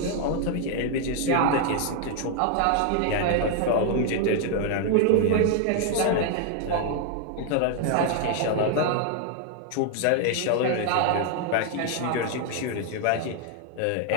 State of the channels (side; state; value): both; different; correlation 0.00